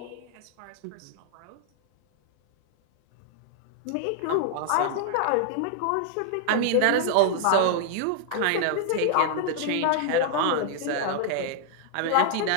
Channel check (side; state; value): both; different; correlation -0.01